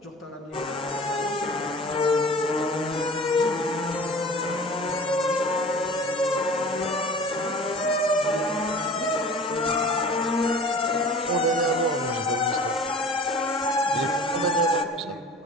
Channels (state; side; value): normal; both; correlation 0.43